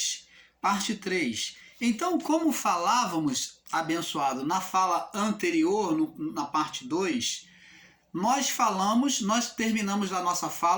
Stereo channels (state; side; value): identical; both; correlation 1.00